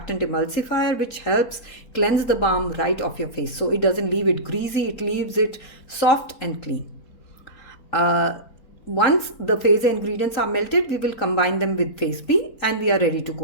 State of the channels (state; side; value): late; right; 4.2 ms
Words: emulsifier which helps cleanse the balm right off your face. So it doesn't leave it greasy, it leaves it soft and clean. Once the phase A ingredients are melted, we will combine them with phase B and we are ready to